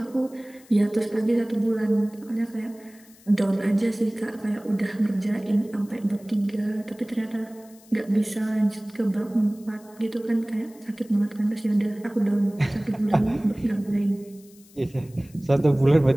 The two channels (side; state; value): left; noise; hiss, 26 dB below the sound